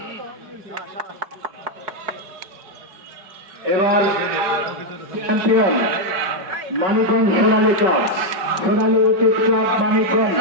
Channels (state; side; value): late; left; 5.3 ms